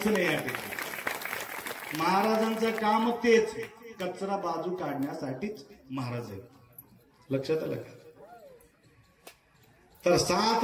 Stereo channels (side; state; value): both; identical; correlation 1.00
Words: नाही या ठिकाणी. महाराजांचं काम तेच, कचरा बाजू काढण्यासाठीच महाराज आहेत. लक्षात आलं का? तर 7